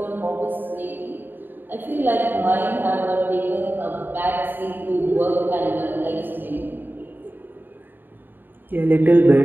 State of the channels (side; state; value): left; late; 0.092 ms